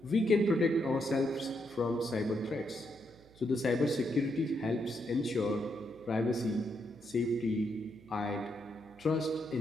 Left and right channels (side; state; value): right; noise; hum, 25 dB below the sound